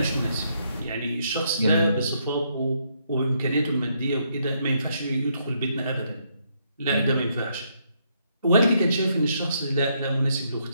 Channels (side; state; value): both; inverted; correlation -0.74